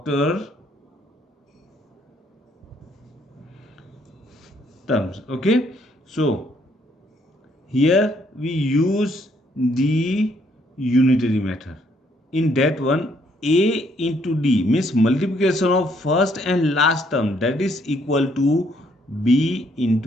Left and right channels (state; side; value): normal; both; correlation 0.69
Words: terms. Okay, so here we use the unitary method. In that one, A into D means multiplication of first and last term, that is equal to B